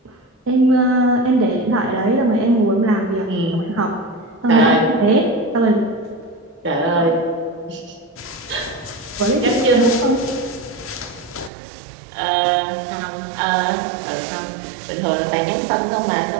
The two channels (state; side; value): drops out; left; at 11.5 s